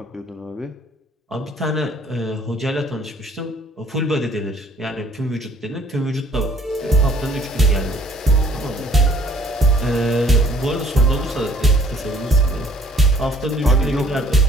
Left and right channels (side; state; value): both; normal; correlation 0.58